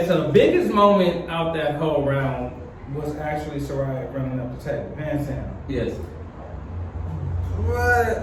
so the biggest moment out that whole round was actually Soraya running up the table, hands down. Yes.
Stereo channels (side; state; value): both; identical; correlation 1.00